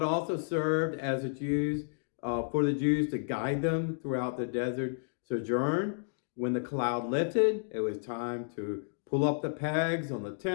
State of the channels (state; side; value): silent; right; digital silence